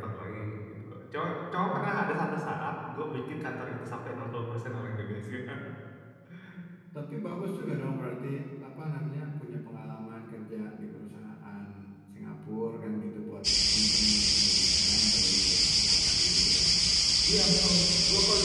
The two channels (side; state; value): both; identical; correlation 1.00